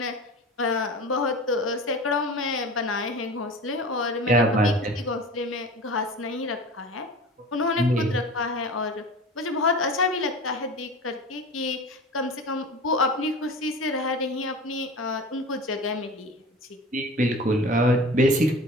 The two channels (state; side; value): normal; both; correlation 0.35